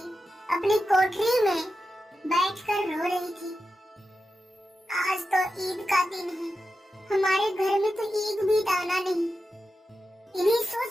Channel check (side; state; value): both; normal; correlation 0.90